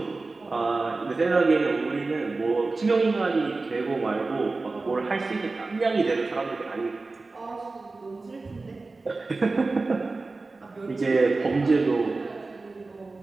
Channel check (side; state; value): left; quieter; 3.6 dB